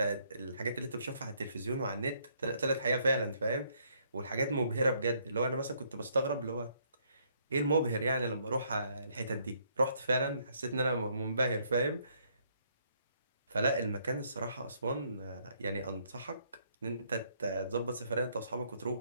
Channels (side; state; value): both; inverted; correlation -0.68